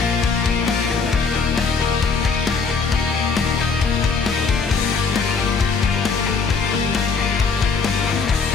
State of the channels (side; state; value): right; quieter; 4.9 dB